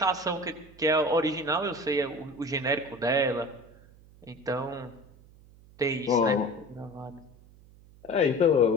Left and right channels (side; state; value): right; noise; hum, 25 dB below the sound